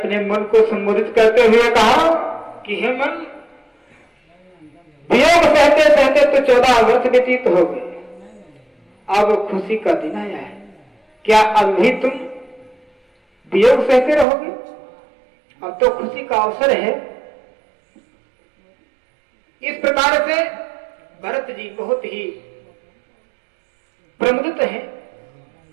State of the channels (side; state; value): left; drops out; at 14.2 s